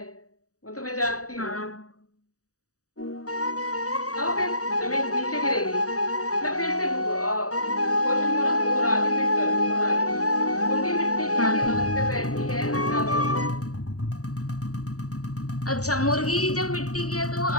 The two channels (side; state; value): right; late; 0.66 ms